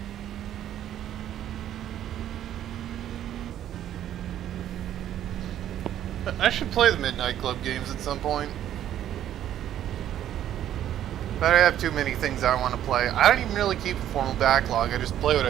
I should play the Midnight Club games at some point. But I have too many things I want to play. I don't even really keep a formal backlog, I just play what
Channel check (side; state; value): left; quieter; 11.3 dB